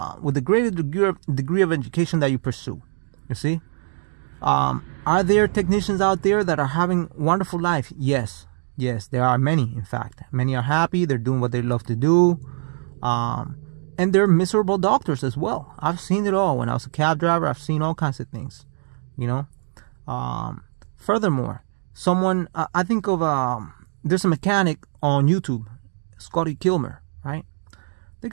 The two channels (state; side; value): silent; left; digital silence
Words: with a greater degree of education that you pursue. You see? Are there technicians out there that are having wonderful life? Yes. Yes, there are many, in fact. Many are happy, they're doing what they love to do. And they're miserable doctors as well. I've seen it all. When I was a cab driver, I've seen all kinds of things, you know. Furthermore, I think of, there's a mechanic on YouTube, Scotty Kilmer, right? The